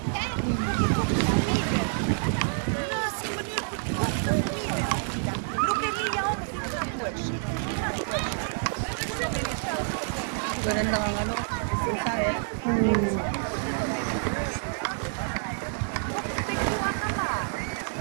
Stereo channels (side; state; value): left; silent; digital silence